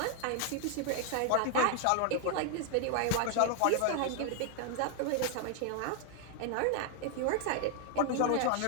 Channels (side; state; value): both; different; correlation 0.00